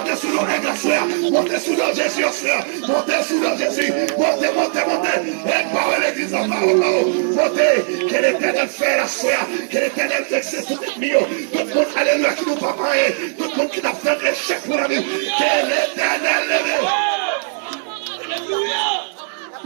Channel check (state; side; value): silent; left; digital silence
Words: sous l'eau aigle à soya, montez sous l'eau Jésus au soya, montez sous l'eau Jésus, montez, aigle par l'église en parole, montez, que l'éternel fait la soya, que l'éternel fixe tout le milieu, tout le monde, alléluia, qui nous pas parler, tout le monde qui n'a fait un échec pour la vie, que l'éternel lève.